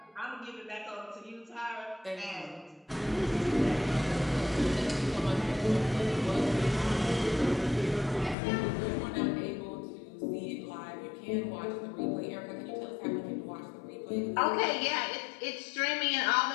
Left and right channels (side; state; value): right; drops out; at 8.3 s